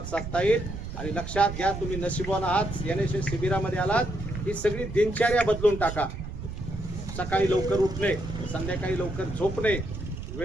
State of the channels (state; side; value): noise; right; rumble, 8 dB below the sound